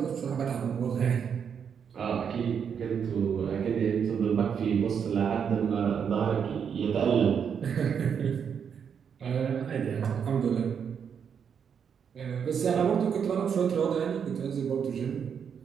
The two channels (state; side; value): quieter; left; 7.3 dB